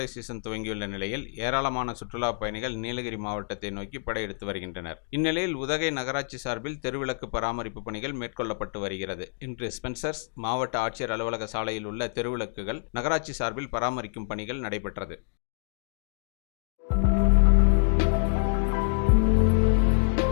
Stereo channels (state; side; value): silent; right; 60 dB below the other